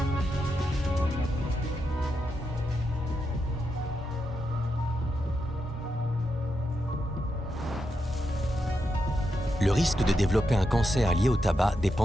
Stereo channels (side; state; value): both; normal; correlation 0.85